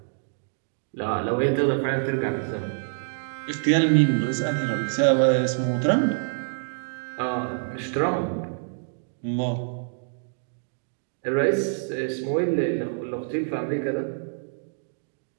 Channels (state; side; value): silent; left; digital silence